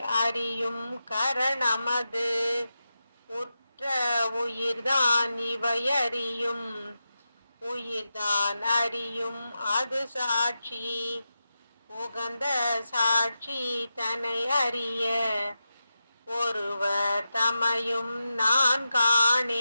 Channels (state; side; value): inverted; both; correlation -0.90